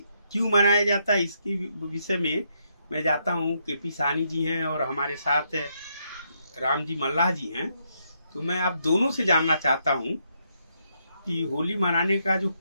क्यों मनाया जाता है इसकी विषय में मैं जाता हूँ। केपी साहनी जी हैं और हमारे साथ राम जी मल्लाह जी हैं। तो मैं आप दोनों से जानना चाहता हूँ कि होली मनाने का जो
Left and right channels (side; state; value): both; inverted; correlation -0.77